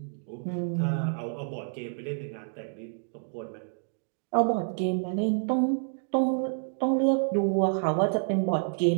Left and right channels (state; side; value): silent; left; digital silence